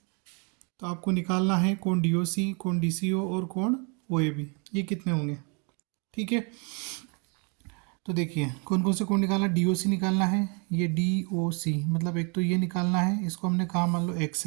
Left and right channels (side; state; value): left; quieter; 35.2 dB